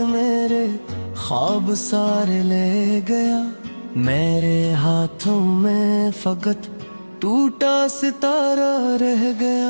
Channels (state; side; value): inverted; both; correlation -1.00